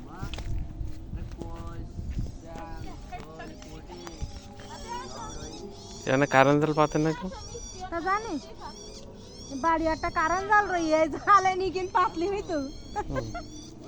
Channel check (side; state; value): both; identical; correlation 1.00